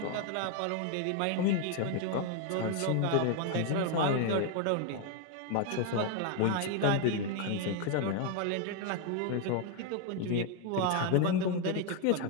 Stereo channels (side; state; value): both; different; correlation 0.01